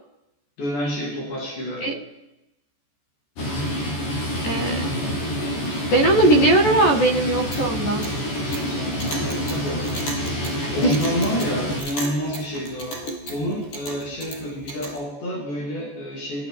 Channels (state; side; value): late; right; 14 ms